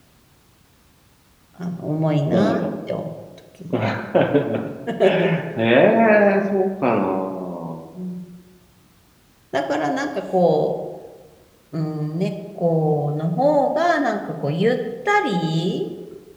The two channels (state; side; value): identical; both; correlation 1.00